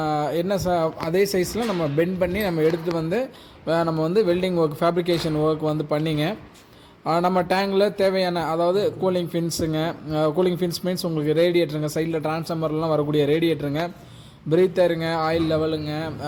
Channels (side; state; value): both; identical; correlation 1.00